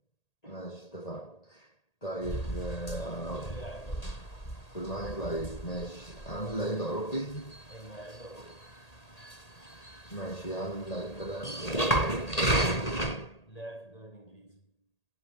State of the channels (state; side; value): late; right; 1.8 ms